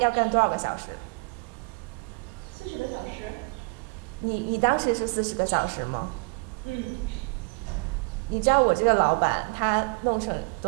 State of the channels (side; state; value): left; quieter; 33.0 dB